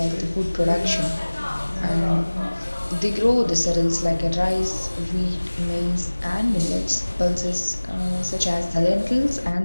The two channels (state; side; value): inverted; both; correlation -1.00